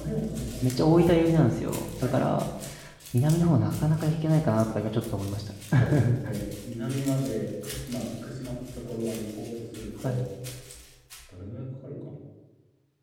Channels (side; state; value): both; identical; correlation 1.00